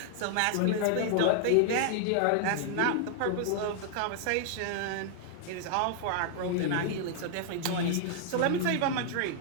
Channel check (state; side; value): different; both; correlation -0.01